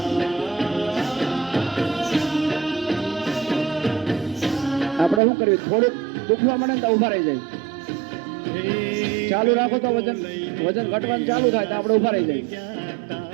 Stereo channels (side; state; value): left; drops out; at 5.2 s